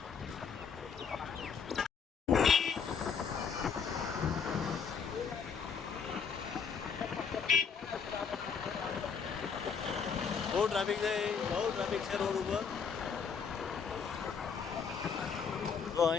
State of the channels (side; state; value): right; quieter; 6.2 dB